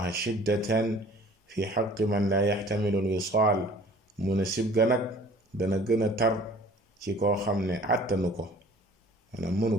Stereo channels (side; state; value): both; normal; correlation 0.50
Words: shiddatan fi xaqi man la yaxtamilu al wisaal mu ne sib ga nag dana gën a tar ci koo xam ne àttanu ko maanaam mënu